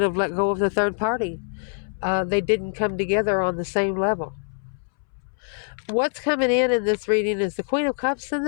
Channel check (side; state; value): right; silent; 62 dB below the other